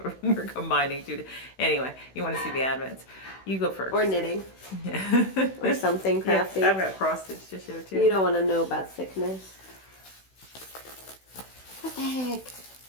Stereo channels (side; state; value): right; late; 16 ms